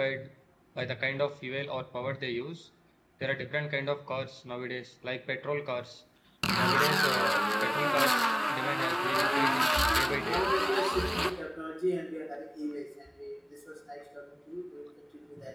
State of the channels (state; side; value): identical; both; correlation 1.00